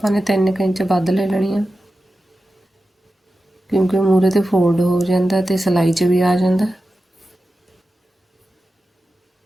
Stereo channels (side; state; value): both; normal; correlation 0.93